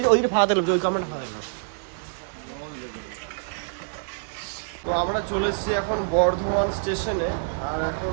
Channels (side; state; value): left; silent; digital silence